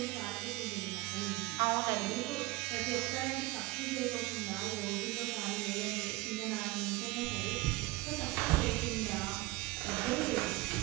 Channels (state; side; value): quieter; left; 20.2 dB